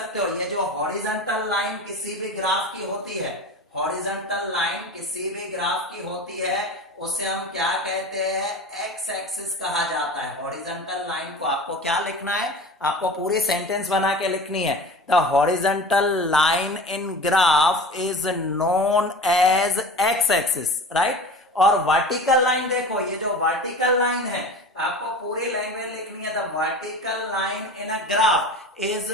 हो ये जो हॉरिजॉन्टल लाइन किसी भी ग्राफ की होती है, हॉरिजॉन्टल लाइन किसी भी ग्राफ की होती है उसे हम क्या कहते हैं, एक्स एक्सिस कहा जाता है। हॉरिजॉन्टल लाइन को आपको क्या लिखना है, आपको पूरी सेंटेंस बना के लिखनी है। The horizontal line in graph is known as X axis, right. और वर्टिकल लाइन देखो, ये जो वर्टिकल लाइन है आपको पूरी लैंग्वेज लिखनी है। The vertical line in a graph is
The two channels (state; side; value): normal; both; correlation 0.34